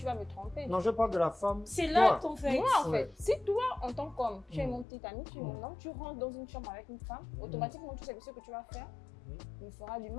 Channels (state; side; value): drops out; right; at 4.9 s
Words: vas me tromper. Non, je parle de la femme. C'est là ton fait. Moi, en fait, si toi, en tant qu'homme, tu es mon petit ami, tu es mon homme, tu rentres dans une chambre avec une femme, automatiquement, tu sais que ce que tu vas faire me fera du